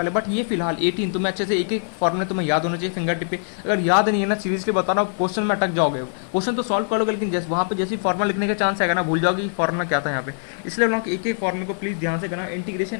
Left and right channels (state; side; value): silent; right; 64 dB below the other